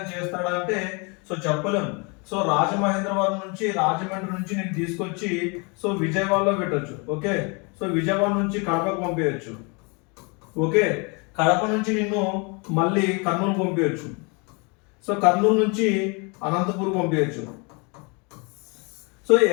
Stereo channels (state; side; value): quieter; right; 31.6 dB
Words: చేస్తాడా అంటే సో చెప్పలేము. సో రాజమహేంద్రవరం నుంచి, రాజమండ్రి నుంచి నేను తీసుకొచ్చి సో విజయవాడలో పెట్టొచ్చు. ఓకే, సో విజయవాడ నుంచి కడపకు పంపించచ్చు. ఓకే, కడప నుంచి నిన్ను మళ్ళీ కర్నూలు పంపించచ్చు. సో కర్నూలు నుంచి అనంతపూర్ పంపించచ్చు. సో